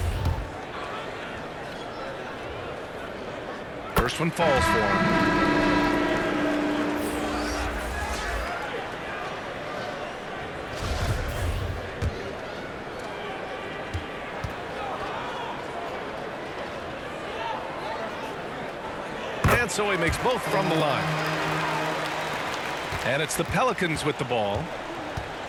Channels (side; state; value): both; identical; correlation 1.00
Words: First one falls for him. And so he makes both from the line. And it's the Pelicans with the ball.